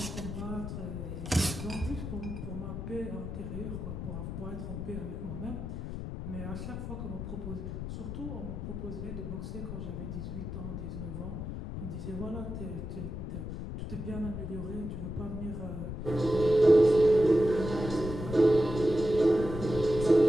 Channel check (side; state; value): left; noise; rumble, 6 dB below the sound